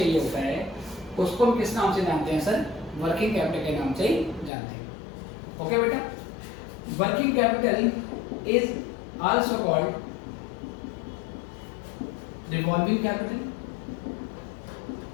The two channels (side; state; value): right; drops out; at 4.5 s